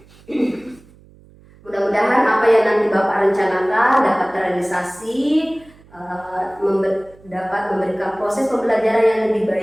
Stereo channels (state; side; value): noise; right; hum, 26 dB below the sound